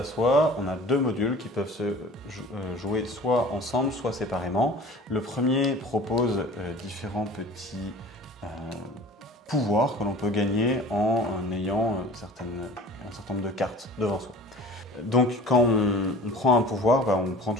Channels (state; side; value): normal; both; correlation 0.44